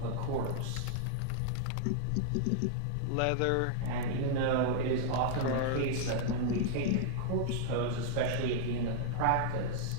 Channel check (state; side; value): different; both; correlation -0.01